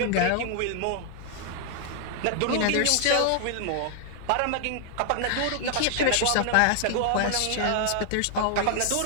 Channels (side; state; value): both; different; correlation 0.00